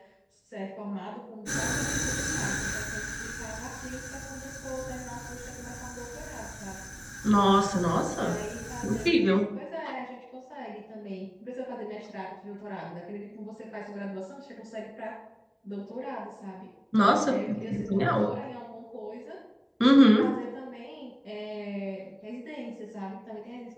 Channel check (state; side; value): identical; both; correlation 1.00